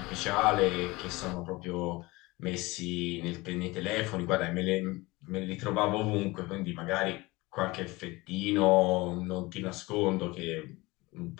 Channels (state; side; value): quieter; right; 22.1 dB